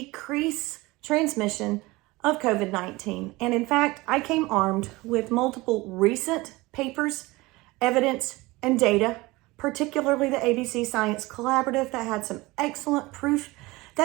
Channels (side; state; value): left; quieter; 21.5 dB